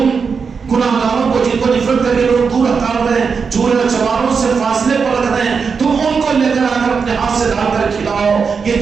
گناہگاروں کو جن کو نفرت کر کے لوگ دور ہٹا رہے ہیں، چورے اور چماروں سے فاصلے پر رکھ رہے ہیں، تم ان کو لے کر آ کر اپنے ہاتھ سے ڈال کر کھلاؤ۔ یہ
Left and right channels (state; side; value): quieter; left; 5.5 dB